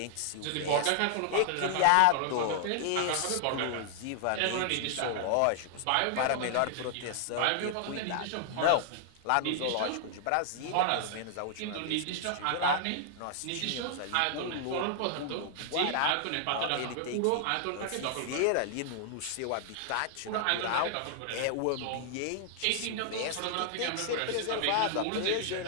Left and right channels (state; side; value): different; both; correlation -0.01